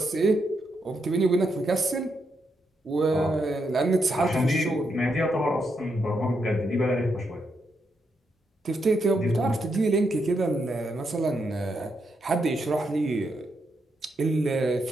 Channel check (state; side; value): normal; both; correlation 0.81